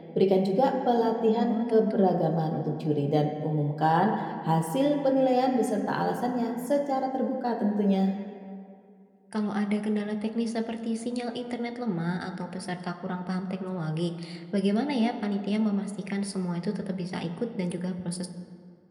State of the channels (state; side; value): identical; both; correlation 1.00